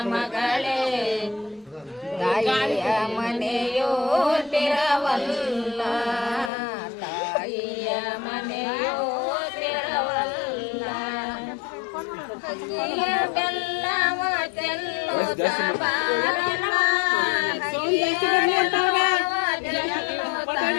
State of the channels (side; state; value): right; drops out; at 6.5 s